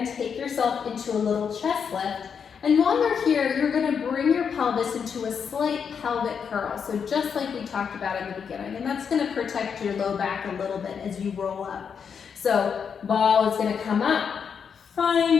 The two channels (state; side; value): quieter; right; 6.8 dB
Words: take yourself into a little chest lift. And while you're here, you're gonna bring your pelvis into a slight pelvic curl. So just like we talked about in the beginning, and that's gonna protect your low back a little bit as you roll up. So ball is gonna come up,